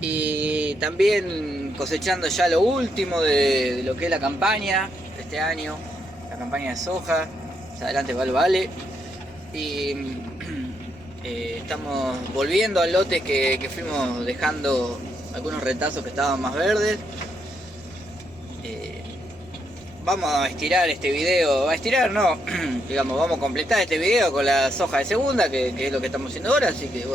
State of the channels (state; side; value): normal; both; correlation 0.78